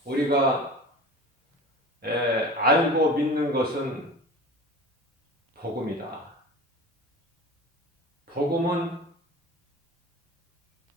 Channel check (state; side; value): normal; both; correlation 0.36